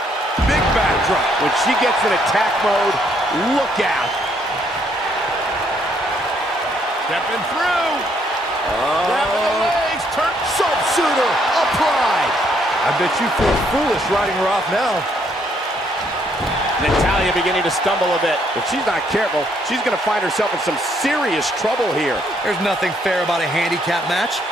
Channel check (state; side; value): normal; both; correlation 0.70